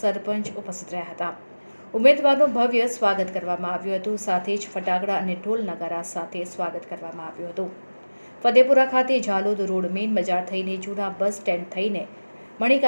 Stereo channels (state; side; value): inverted; both; correlation -1.00